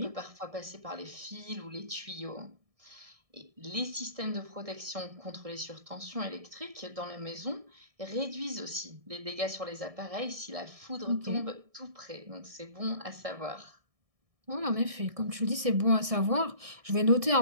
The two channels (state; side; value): late; left; 1.6 ms